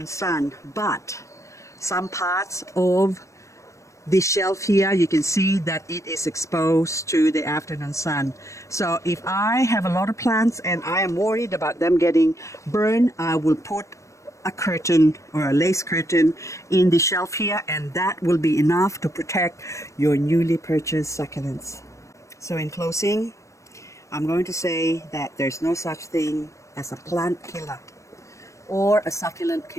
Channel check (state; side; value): late; right; 0.15 ms